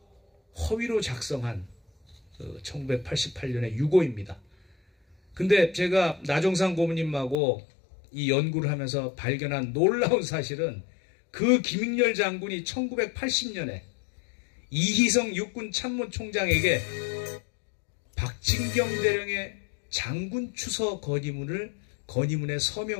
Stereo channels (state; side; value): drops out; right; at 7.4 s